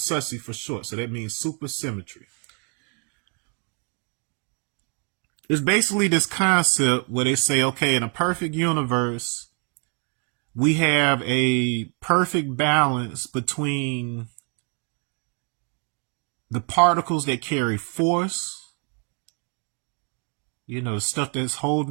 for short. So that means supersymmetry. It's basically this concept where they say, okay, in a perfect universe, we have a perfect balance between the particles that carry force, the stuff that's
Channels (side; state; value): left; quieter; 37.5 dB